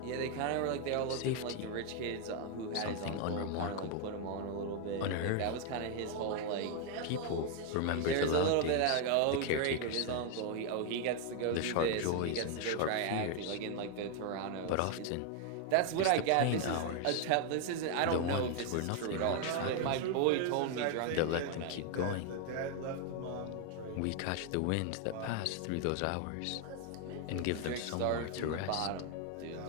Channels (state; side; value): different; both; correlation 0.01